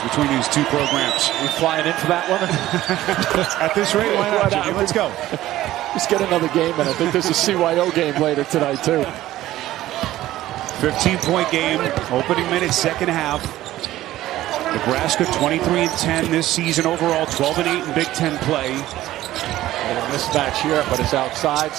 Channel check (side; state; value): left; quieter; 14.9 dB